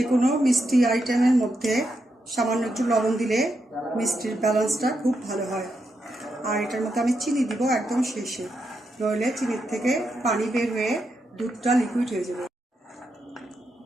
কোনো মিষ্টি আইটেমের মধ্যে সামান্য একটু লবণ দিলে মিষ্টির ব্যালেন্সটা খুব ভালো হয়। আর এটার মধ্যে আমি চিনি দিব একদম শেষে, নইলে চিনির থেকে পানি বের হয়ে দুধটা লিকুইড হয়ে যাবে।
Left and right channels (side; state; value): both; normal; correlation 0.83